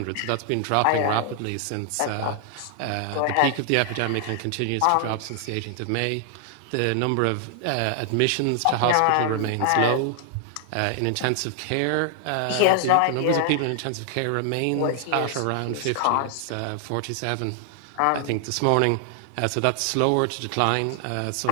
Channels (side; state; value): both; different; correlation 0.00